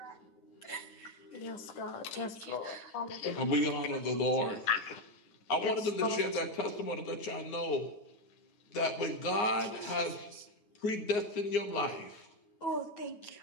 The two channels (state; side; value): late; right; 9.7 ms